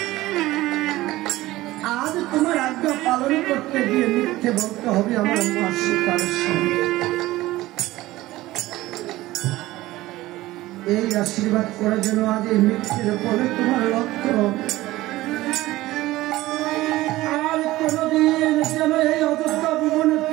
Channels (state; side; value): quieter; left; 17.4 dB